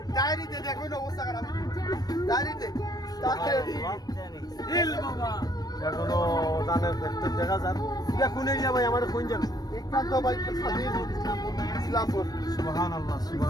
ডায়েরিতে দেখো না অবস্থা খারাপ ডায়েরিতে ইল বাবা এখনো দানের ফ্যাক্টর দেখা যান এটা কোন এরিয়া ভাই আমার কোন জায়গা একান্ত ভাই ইসলামপুর সুবহানাল্লাহ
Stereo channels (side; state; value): right; late; 0.19 ms